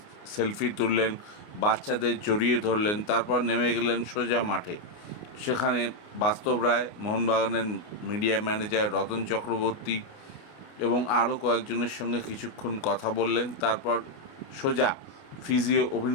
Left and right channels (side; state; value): right; late; 29 ms